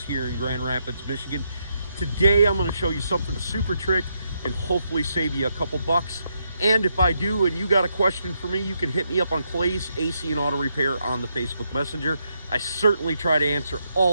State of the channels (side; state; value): both; inverted; correlation -0.79